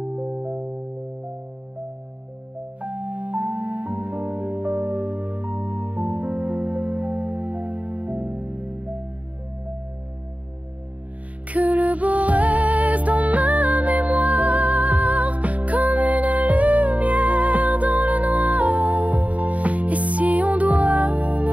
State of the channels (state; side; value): late; left; 0.069 ms